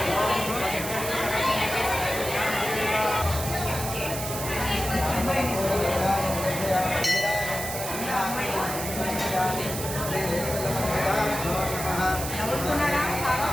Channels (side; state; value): right; noise; hiss, 6 dB below the sound